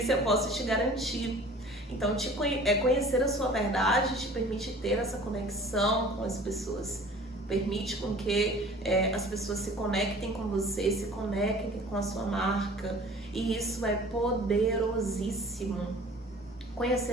eu posso te garantir. Então, conhecer a sua verdade te permite ter essa conexão com as pessoas. Permite com que as pessoas se conectem com você, se conectem com a sua marca. E isso é poderosíssimo.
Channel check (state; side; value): normal; both; correlation 0.46